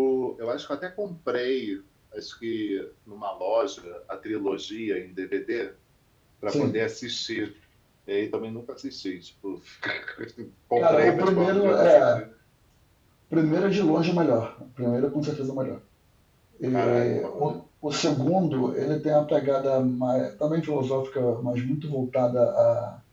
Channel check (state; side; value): identical; both; correlation 1.00